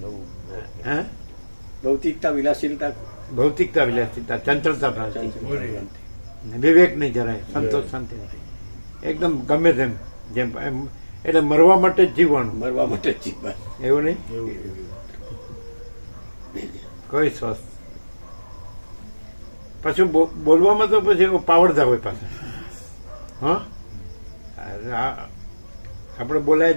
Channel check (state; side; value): inverted; both; correlation -1.00